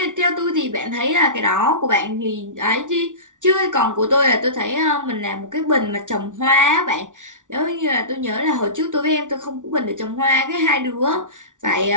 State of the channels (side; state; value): left; late; 0.87 ms